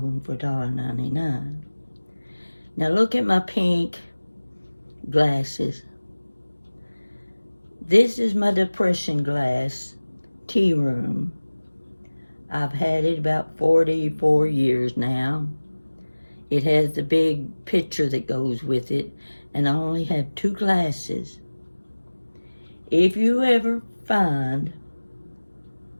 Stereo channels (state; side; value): inverted; both; correlation -1.00